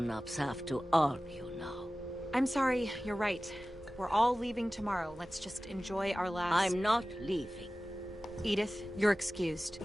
have to argue now. I'm sorry, you're right. We're all leaving tomorrow. Let's just enjoy our last... I'm not leaving. Edith, you're excused.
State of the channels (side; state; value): both; normal; correlation 0.96